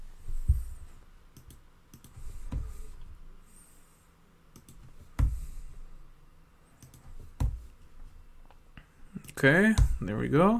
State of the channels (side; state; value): both; identical; correlation 1.00